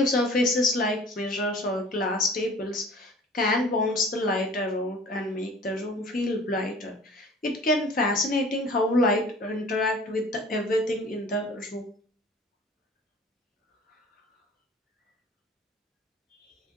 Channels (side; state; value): both; normal; correlation 0.46